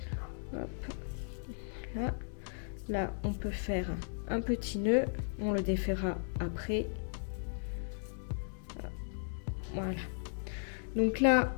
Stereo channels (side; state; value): right; silent; digital silence